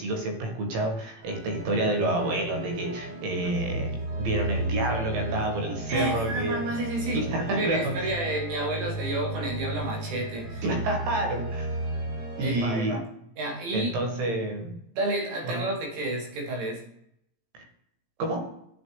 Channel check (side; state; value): left; late; 18 ms